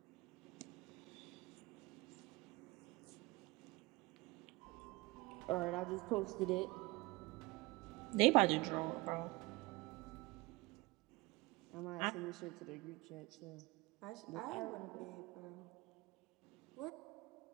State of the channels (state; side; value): quieter; left; 23.2 dB